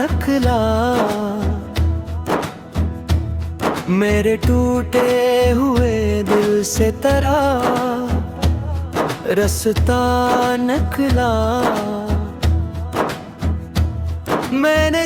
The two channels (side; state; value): both; identical; correlation 1.00